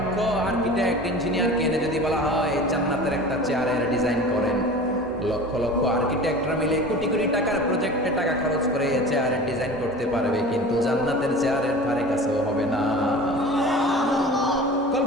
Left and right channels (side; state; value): both; normal; correlation 0.38